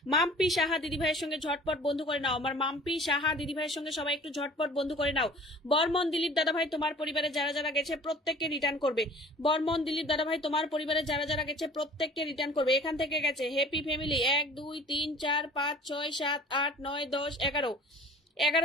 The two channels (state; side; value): normal; both; correlation 0.47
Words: মাম্পি সাহা দিদিভাইয়ের সঙ্গে ঝটপট বন্ধু করে নাও। আমার মাম্পি সাহা দিদিভাইয়ের সঙ্গে সবাই একটু ঝটপট বন্ধু করে নাও। বর্মন দিলীপ দাদাভাই তোমার পরিবারে যারা যারা গেছে প্রত্যেককে রিটার্ন করবে। বর্মন দিলীপ দাদাভাই তোমার পরিবারে যারা যারা গেছে প্রত্যেককে রিটার্ন করবে। এখান থেকে গেছে হ্যাপি ফ্যামিলি 1 2 3 4 5 6 7 8 9 10 11